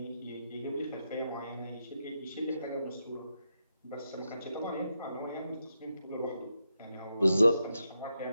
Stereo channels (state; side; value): inverted; both; correlation -0.84